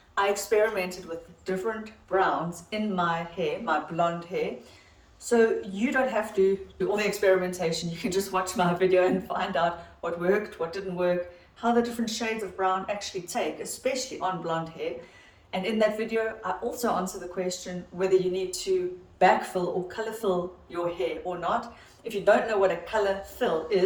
I experimented with different browns in my hair, my blonde hair. So you don't have to do all the experimentation. You can just watch my video and find out what worked, what didn't work, how the different shades of brown actually take, especially on blonde hair. And in that video, I also answer the question whether you need to backfill or color fill your hair or not. If you don't know what a color fill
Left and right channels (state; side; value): identical; both; correlation 1.00